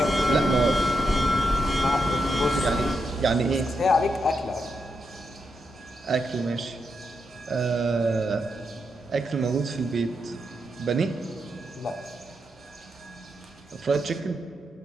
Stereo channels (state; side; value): normal; both; correlation 0.84